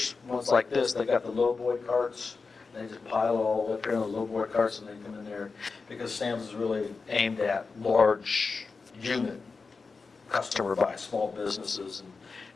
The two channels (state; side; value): quieter; right; 4.5 dB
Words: ones like this, they got the lowboy carts. They just pile it all up here in the lowboy carts and they come in there, because Sam's is really aimed at large unit customer by small businesses and